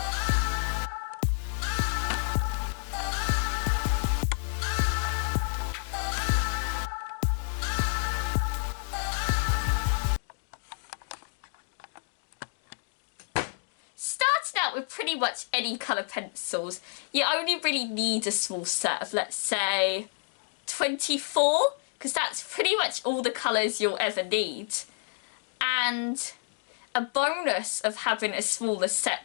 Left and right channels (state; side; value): silent; right; digital silence